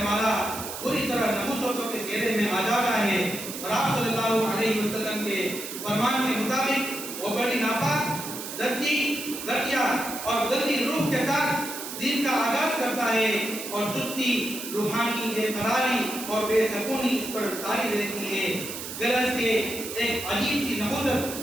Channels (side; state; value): right; noise; hiss, 8 dB below the sound